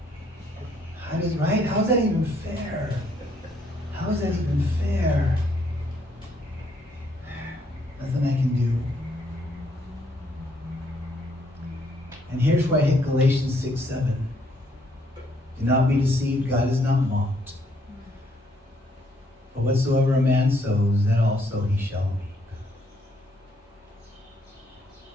How is that even fair? How is that even fair? Nothing I can do. And here's where I hit Galatians 6:7. Do not be deceived, God is not mocked. For whatsoever a man sows, that also he shall reap.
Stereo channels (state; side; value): normal; both; correlation 0.70